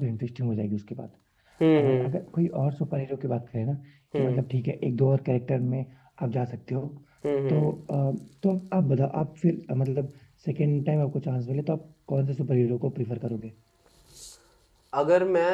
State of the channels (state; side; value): identical; both; correlation 1.00